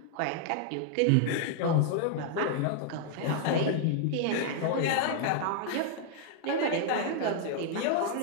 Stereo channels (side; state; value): both; different; correlation 0.00